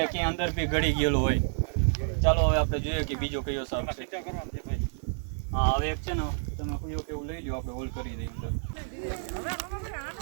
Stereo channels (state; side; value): silent; left; 58 dB below the other